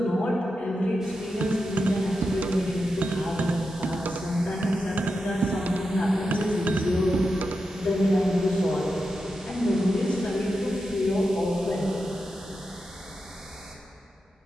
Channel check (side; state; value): both; normal; correlation 0.88